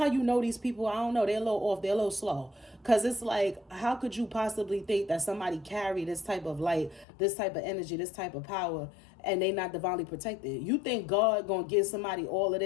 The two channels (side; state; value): right; drops out; at 7.1 s